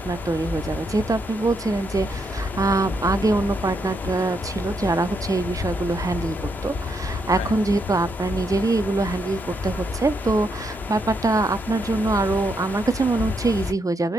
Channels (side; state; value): both; normal; correlation 0.78